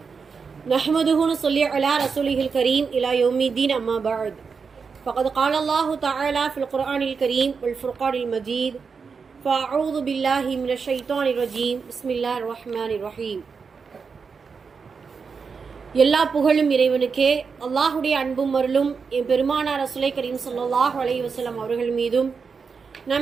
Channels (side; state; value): left; quieter; 5.4 dB